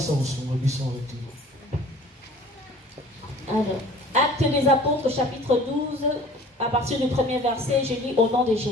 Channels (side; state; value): both; normal; correlation 0.47